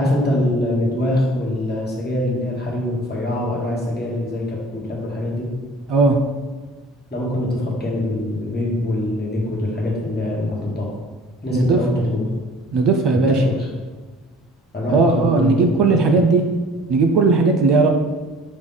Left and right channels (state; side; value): normal; both; correlation 0.49